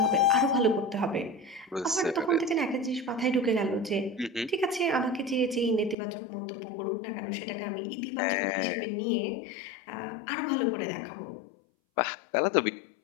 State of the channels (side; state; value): right; drops out; at 6.0 s